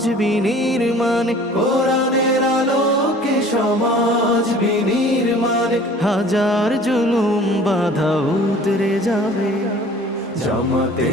বিনির্মাণ, কোরআনের আলোকে সমাজ বিনির্মাণ, হাজার জুলুম বাধা উতরে যাবে।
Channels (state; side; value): normal; both; correlation 0.48